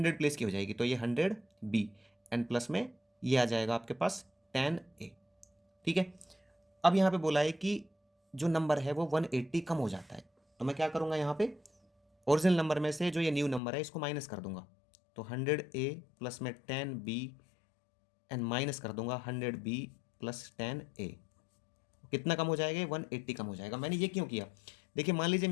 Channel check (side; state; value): right; drops out; at 13.6 s